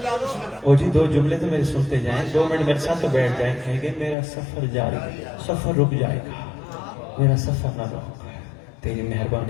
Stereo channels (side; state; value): right; drops out; at 4.2 s